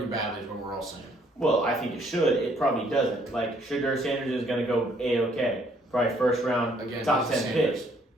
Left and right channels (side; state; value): both; normal; correlation 0.65